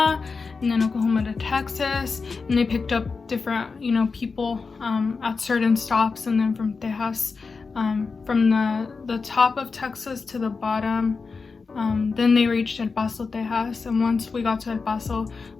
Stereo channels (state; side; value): quieter; right; 4.6 dB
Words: and then Oklahoma to Texas, and they picked up different, you know, people at certain stops. And then from Texas, from the top of Texas to the bottom, then they reached El Paso, Texas. And once we got to El Paso,